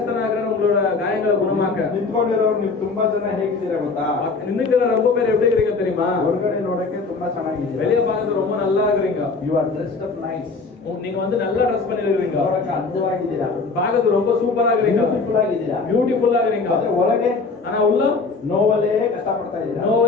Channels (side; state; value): right; quieter; 4.2 dB